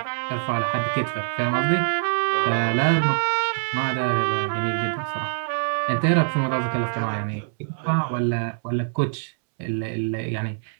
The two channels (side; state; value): left; silent; digital silence